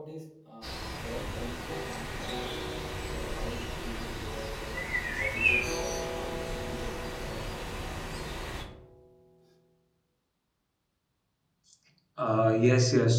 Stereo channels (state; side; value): identical; both; correlation 1.00